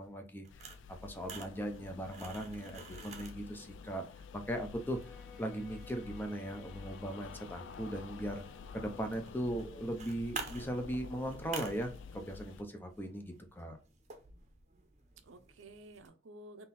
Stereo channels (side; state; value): both; normal; correlation 0.68